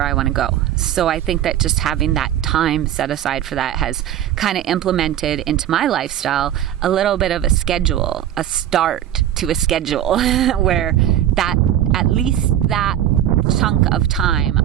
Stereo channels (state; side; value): quieter; left; 11.5 dB